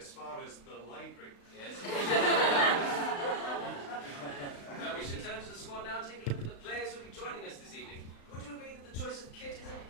far as the library. Yes. Well, we should turn to the squad now and take a look at the players who will be joining us this evening. Would you agree that the choice of kit is an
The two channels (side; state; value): right; late; 35 ms